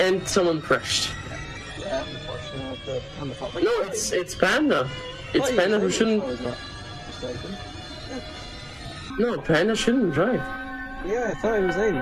someone crashed. Yeah, unfortunately, on the top. No, it's Panda. It's Panda who shouldn't. No, Panda shouldn't drive. Yeah, I thought he was in.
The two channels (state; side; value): identical; both; correlation 1.00